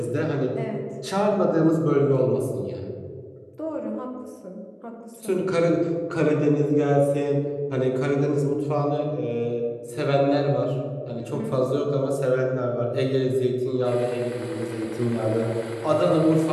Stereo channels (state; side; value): identical; both; correlation 1.00